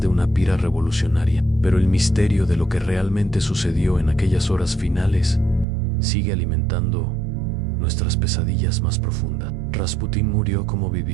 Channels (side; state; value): left; drops out; at 5.7 s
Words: de una pira revolucionaria. Pero el misterio de lo que realmente sucedió en aquellas horas finales sigue alimentando nuestras pesadillas más profundas. Rasputín murió como